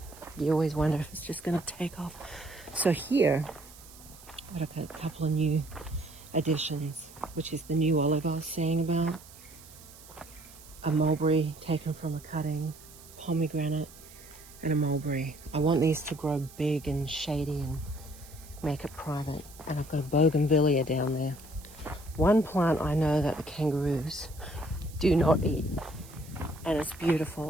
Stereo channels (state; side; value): noise; right; hiss, 20 dB below the sound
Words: You always wonder if it's just going to take off. So here, I've got a couple of new additions, which is the new olive I was saying about. A mulberry taken from a cutting, pomegranate, and a mulberry. I want these to grow big and shady and make it private. And I've got a bougainvillea down there. One plant I know that the kangaroos do not eat, and it's